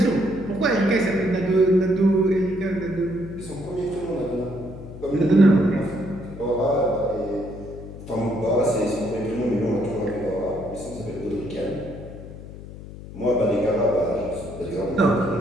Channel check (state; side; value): noise; left; hum, 14 dB below the sound